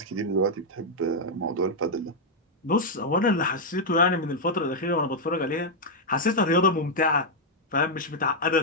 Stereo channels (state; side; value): normal; both; correlation -0.02